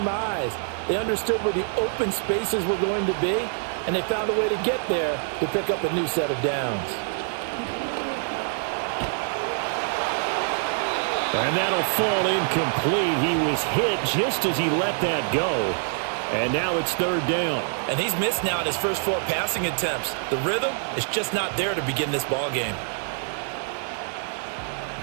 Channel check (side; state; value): left; silent; 61 dB below the other